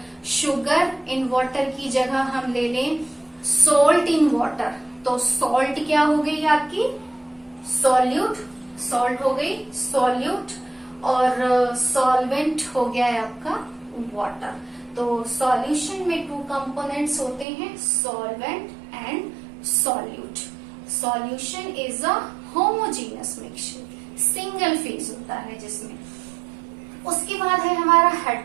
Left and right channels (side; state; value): left; drops out; at 17.4 s